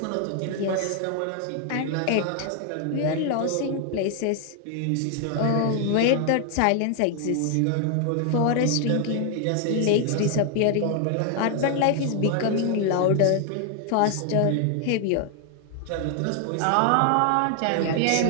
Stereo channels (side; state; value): both; different; correlation 0.00